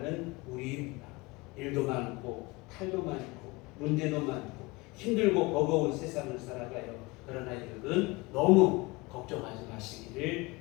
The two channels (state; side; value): quieter; right; 23.9 dB